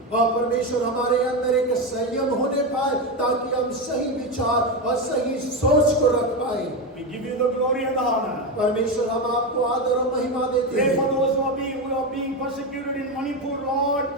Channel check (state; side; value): normal; both; correlation 0.13